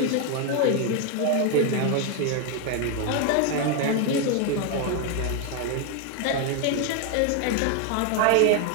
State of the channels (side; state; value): both; different; correlation 0.01